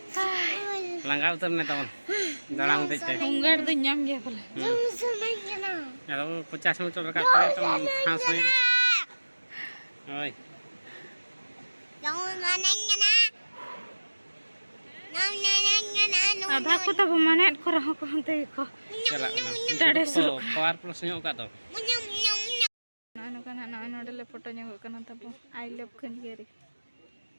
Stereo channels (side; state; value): both; inverted; correlation -1.00